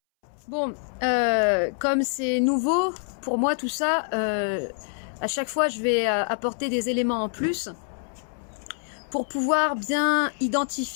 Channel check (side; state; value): right; silent; 61 dB below the other